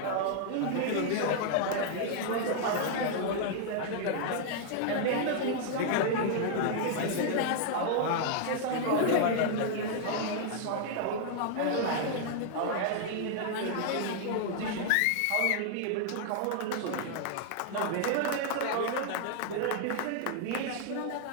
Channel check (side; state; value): both; different; correlation 0.00